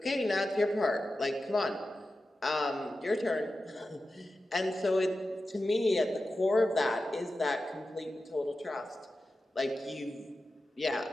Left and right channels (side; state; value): both; normal; correlation 0.92